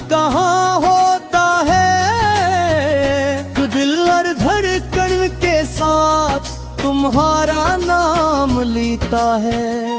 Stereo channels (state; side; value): identical; both; correlation 1.00